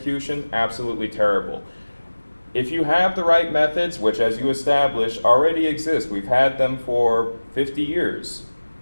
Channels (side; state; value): both; inverted; correlation -1.00